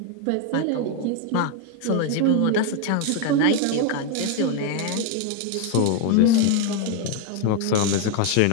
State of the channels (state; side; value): different; both; correlation 0.01